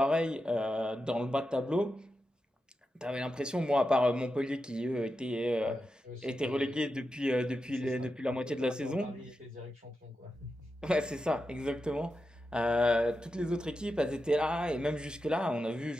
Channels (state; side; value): normal; both; correlation 0.89